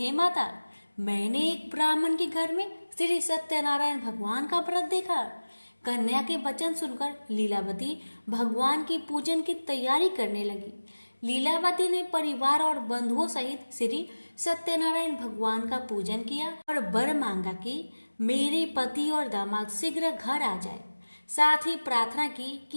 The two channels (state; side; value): inverted; both; correlation -1.00